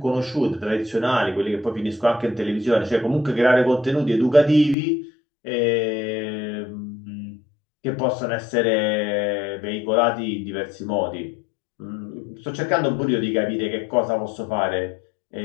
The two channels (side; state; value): right; drops out; at 4.8 s